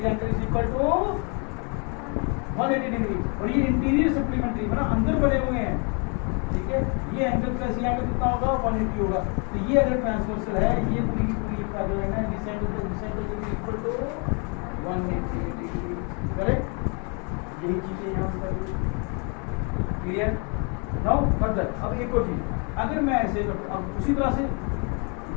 angle is equal to 180 degree. और ये इंटीरियर सप्लीमेंट्री मतलब अंदर बने हुए हैं, ठीक है, ये एंगल प्लस ये एंगल कितना होगा, 180 होगा। तो ये अगर ट्रांसवर्सल है, ये पूरी पूरी पैरेलल है, this angle plus this angle is equal to 180 degree. Correct, यही चीजें यहाँ पर क्लियर। नाउ फर्दर, अब एक और चीज, अगर मैं ऐसे, अब उसी तरह से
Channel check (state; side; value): quieter; right; 35.8 dB